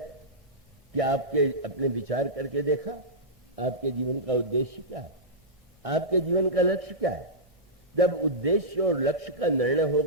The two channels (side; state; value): both; normal; correlation -0.13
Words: कि आपके अपने विचार करके देखा आपके जीवन का उद्देश्य क्या है, आपके जीवन का लक्ष्य क्या है? जब उद्देश्य और लक्ष्य का निर्णय